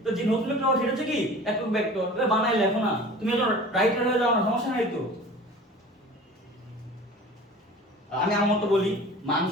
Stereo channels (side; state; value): both; normal; correlation 0.41